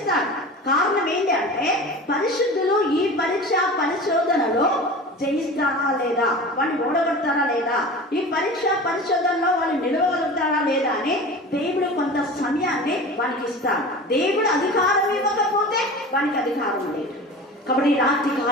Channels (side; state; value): both; normal; correlation 0.35